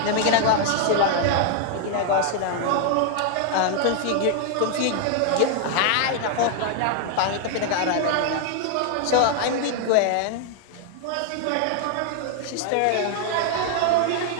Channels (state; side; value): different; both; correlation 0.00